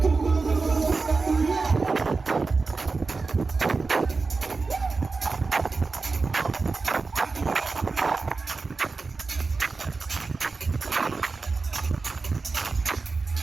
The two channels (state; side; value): quieter; left; 4.1 dB